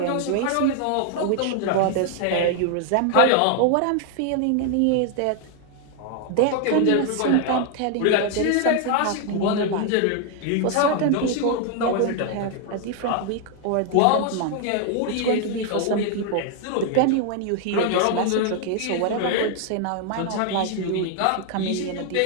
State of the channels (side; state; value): both; different; correlation 0.00